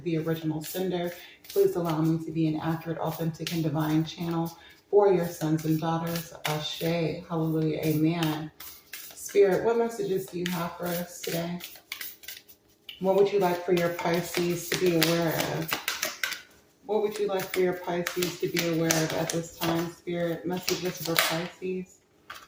original sender. Please allow me to be an accurate, authentic, and divine channel for your sons and daughters. Ashe, hallelujah, amen. Spirit, what messages do you have for us today? What would you like for your Pisces to be aware of? What would you like for your Pisces to be aware of at this time, Spirit? Messages for Pisces.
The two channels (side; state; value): both; identical; correlation 1.00